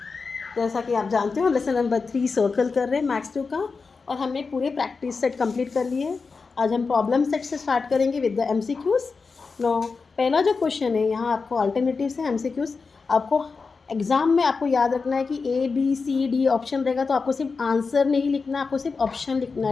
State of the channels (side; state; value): right; quieter; 4.6 dB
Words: जैसा कि आप जानते हो लेसन नंबर 3 सर्कल कर रहे हैं मैथ्स 2 का, और हमने पूरे प्रैक्टिस सेट कंप्लीट कर लिए। आज हम प्रॉब्लम सेट से स्टार्ट करेंगे विद द एमसीक्यूज। नो, पहला जो क्वेश्चन है यहाँ आपको अल्टरनेटिव्स है एमसीक्यूज। आपको एग्जाम में आपको याद रखना है कि A B C D option रहेगा, तो आपको सिर्फ आंसर नहीं लिखना, आपको सिर्फ ऑप्शन लिखना